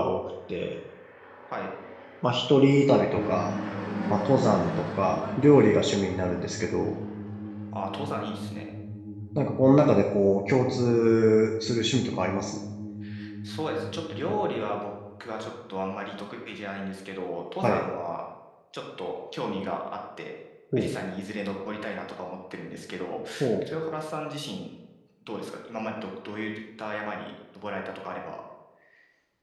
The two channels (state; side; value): identical; both; correlation 1.00